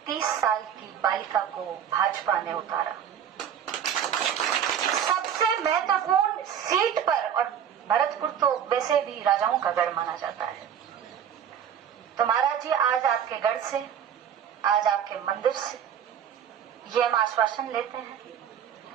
30 साल की बालिका को भाजपा ने उतारा। सबसे महत्वपूर्ण सीट पर, और भरतपुर तो वैसे भी राजाओं का गढ़ माना जाता है। तो महाराज जी आज आपके गढ़ से, आज आपके मंदिर से ये हम आश्वासन लेते हैं।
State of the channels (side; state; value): left; quieter; 8.8 dB